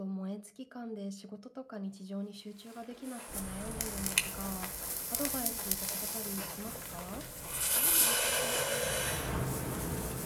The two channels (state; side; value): identical; both; correlation 1.00